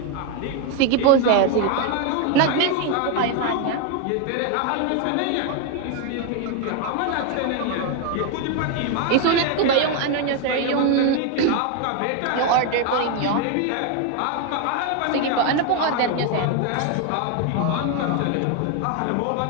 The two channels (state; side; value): different; both; correlation 0.01